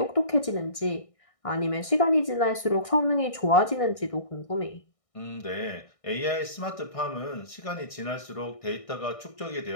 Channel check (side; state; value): right; late; 1.6 ms